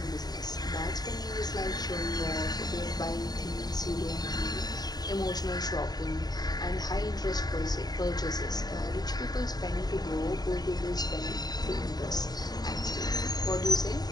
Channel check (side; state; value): right; late; 0.19 ms